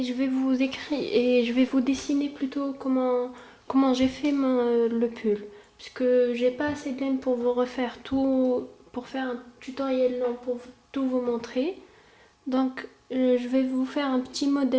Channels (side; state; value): both; identical; correlation 1.00